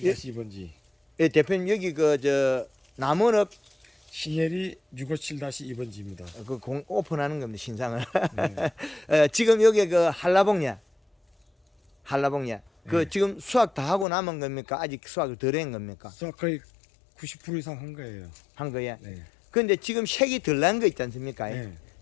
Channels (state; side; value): drops out; right; at 14.1 s